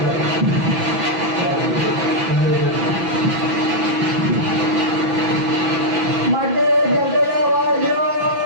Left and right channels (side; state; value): left; late; 6.0 ms